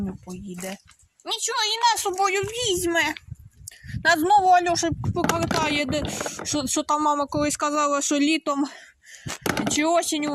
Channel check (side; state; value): both; identical; correlation 1.00